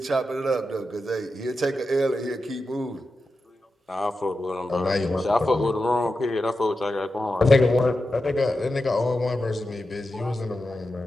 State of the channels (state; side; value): normal; both; correlation 0.90